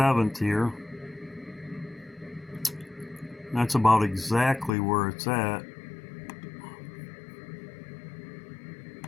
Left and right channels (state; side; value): drops out; right; at 4.7 s